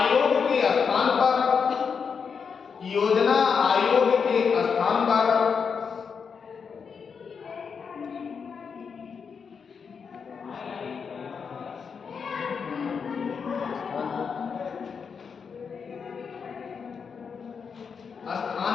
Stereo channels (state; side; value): quieter; right; 6.1 dB